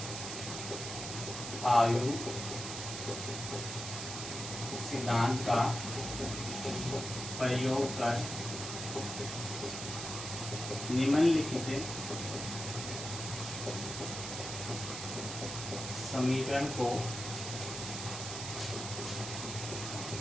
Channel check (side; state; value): right; noise; hiss, 6 dB below the sound